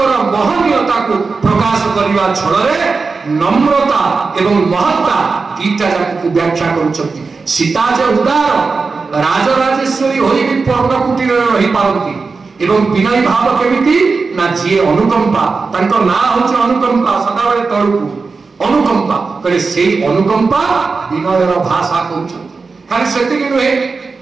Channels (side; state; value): left; quieter; 4.4 dB